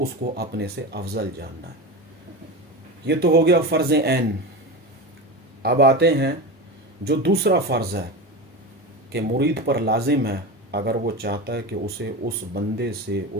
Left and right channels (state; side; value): normal; both; correlation 0.23